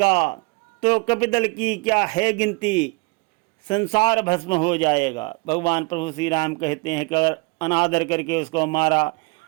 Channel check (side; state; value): left; quieter; 29.5 dB